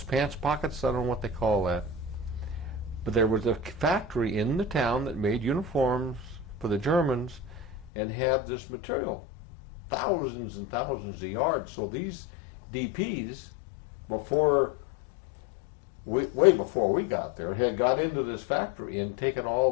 pants pockets, I don't know what they call that. But there was a factory in the town that made uniforms for the Germans and had this material, thousands and thousands of yards. So these DPs, way before we got there, had got into this factory and taken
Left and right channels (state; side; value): drops out; right; at 7.9 s